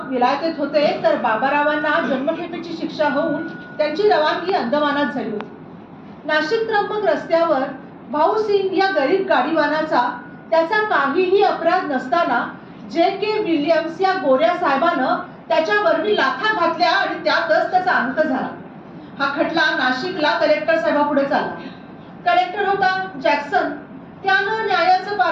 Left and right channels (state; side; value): identical; both; correlation 1.00